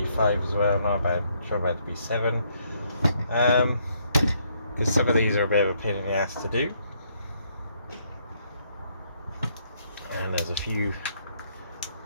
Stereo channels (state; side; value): inverted; both; correlation -0.71